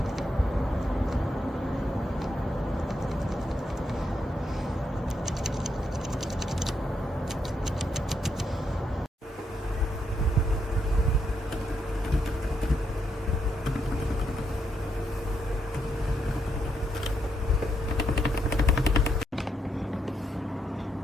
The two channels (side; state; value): both; normal; correlation 0.80